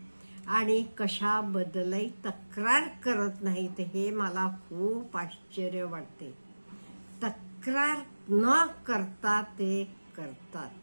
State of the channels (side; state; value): both; inverted; correlation -1.00